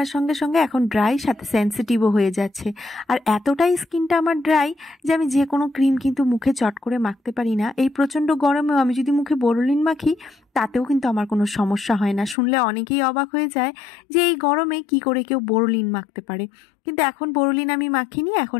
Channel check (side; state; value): right; drops out; at 12.4 s